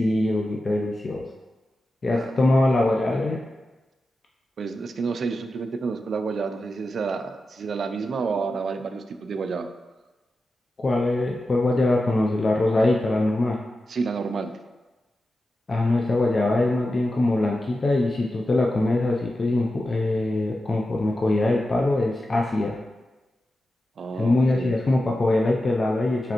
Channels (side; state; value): both; normal; correlation 0.91